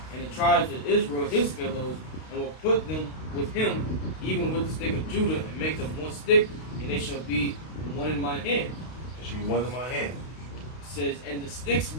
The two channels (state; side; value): late; right; 32 ms